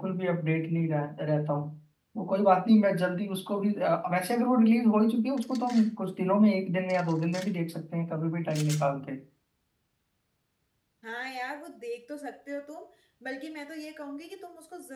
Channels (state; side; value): identical; both; correlation 1.00